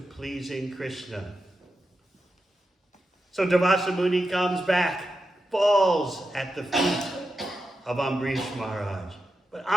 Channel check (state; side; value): normal; both; correlation 0.89